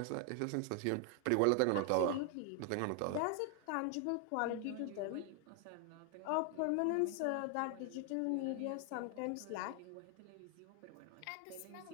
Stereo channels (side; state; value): both; different; correlation 0.00